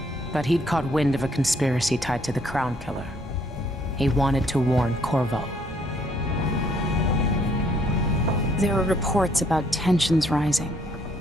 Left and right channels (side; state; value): both; normal; correlation 0.66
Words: but he'd caught wind of a conspiracy tied to the Crown Killer. He wanted to warn Corvo. There were reports about tensions rising,